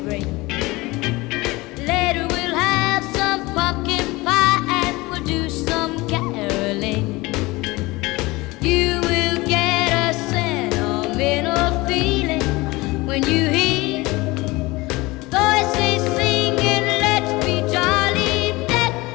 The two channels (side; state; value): right; quieter; 22.0 dB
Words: ring. Later we'll have some pumpkin pie and we'll do some caroling. You will get a sentimental feeling when you hear voices singing, let's be jolly, deck